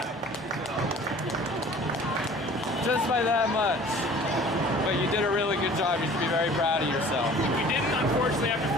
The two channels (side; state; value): both; normal; correlation 0.48